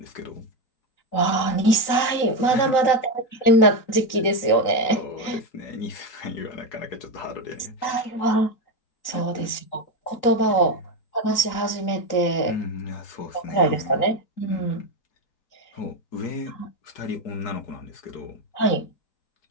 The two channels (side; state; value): right; late; 3.9 ms